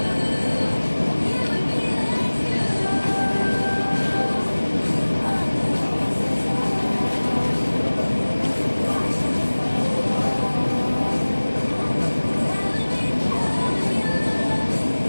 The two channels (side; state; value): both; inverted; correlation -1.00